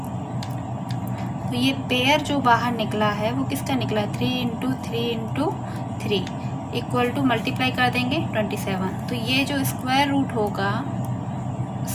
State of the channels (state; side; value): identical; both; correlation 1.00